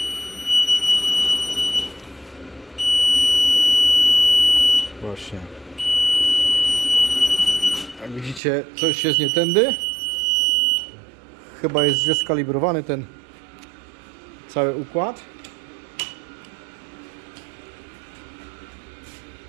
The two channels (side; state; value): left; drops out; at 8.4 s